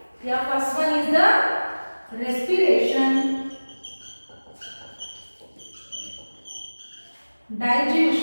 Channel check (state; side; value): inverted; both; correlation -1.00